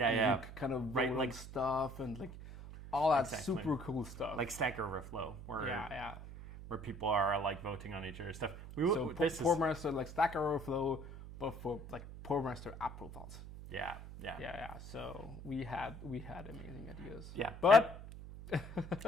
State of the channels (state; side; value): noise; right; hum, 12 dB below the sound